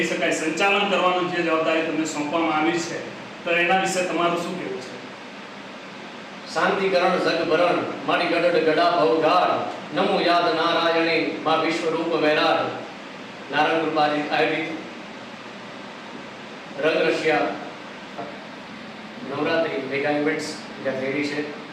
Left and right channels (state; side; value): identical; both; correlation 1.00